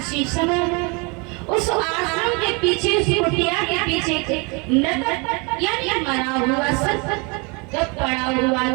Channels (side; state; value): left; quieter; 30.5 dB